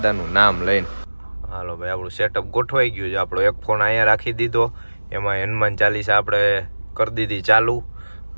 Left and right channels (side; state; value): both; inverted; correlation -1.00